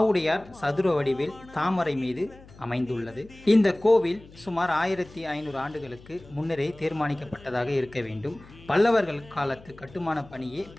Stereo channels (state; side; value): noise; left; hum, 22 dB below the sound